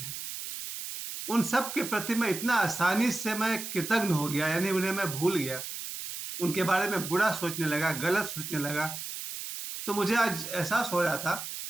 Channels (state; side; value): noise; right; hiss, 7 dB below the sound